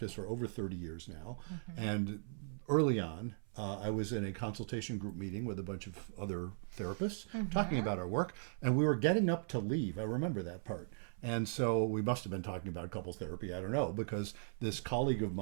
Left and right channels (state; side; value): silent; left; 52 dB below the other